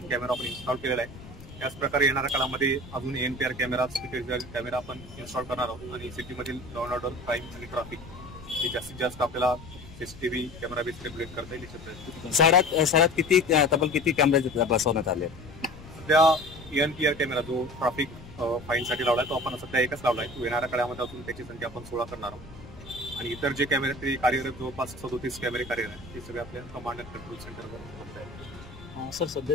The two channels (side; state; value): left; noise; rumble, 17 dB below the sound